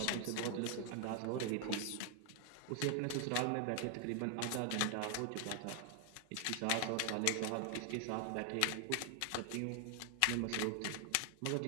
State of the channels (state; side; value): different; both; correlation 0.00